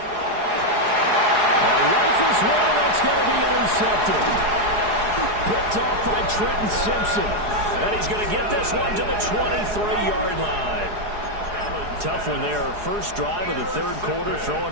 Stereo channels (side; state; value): left; late; 4.8 ms